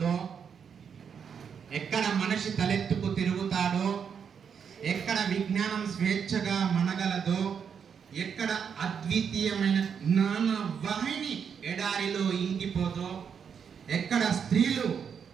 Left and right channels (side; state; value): left; quieter; 7.1 dB